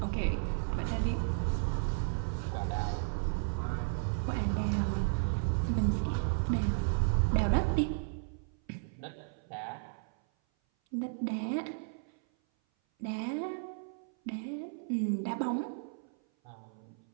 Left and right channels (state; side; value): silent; left; 55 dB below the other